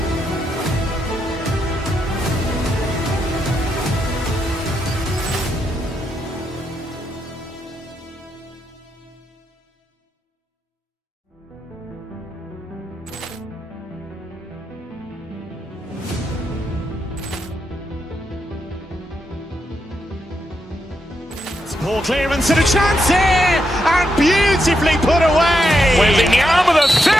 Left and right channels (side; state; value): both; normal; correlation 0.83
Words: Ball clearance and a chance here, and beautifully put away. Waving the arm of the